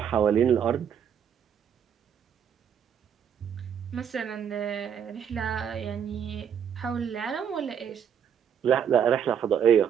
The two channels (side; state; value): left; quieter; 8.3 dB